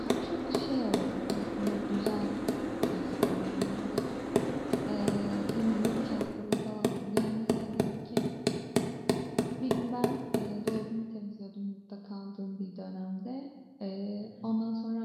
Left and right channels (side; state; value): both; identical; correlation 1.00